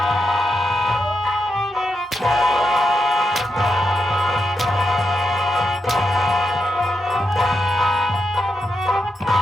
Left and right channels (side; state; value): both; normal; correlation 0.85